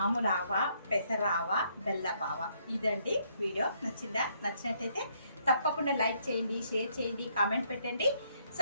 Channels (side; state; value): both; inverted; correlation -0.70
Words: ఆవా, పెసరావా, బెల్లపావా. ఇదండి వీడియో. నచ్చినట్టయితే తప్పకుండా లైక్ చేయండి, షేర్ చేయండి, కామెంట్ పెట్టండి,